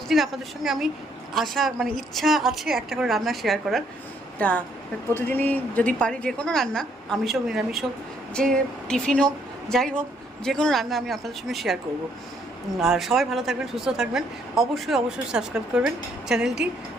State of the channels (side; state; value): both; normal; correlation 0.69